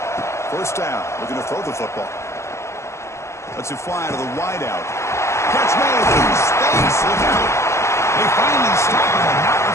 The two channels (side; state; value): right; late; 0.13 ms